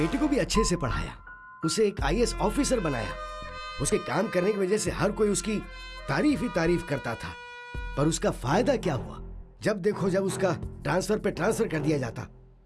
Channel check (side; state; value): both; identical; correlation 1.00